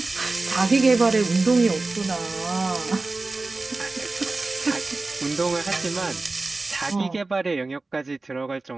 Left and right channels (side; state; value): left; quieter; 3.4 dB